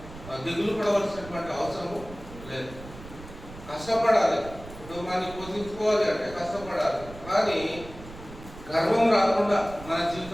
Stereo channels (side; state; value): right; noise; rumble, 16 dB below the sound